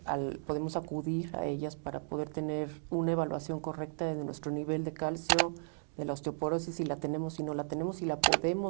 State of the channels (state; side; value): silent; left; digital silence